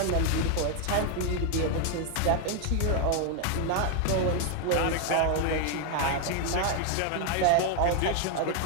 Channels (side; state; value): both; different; correlation 0.00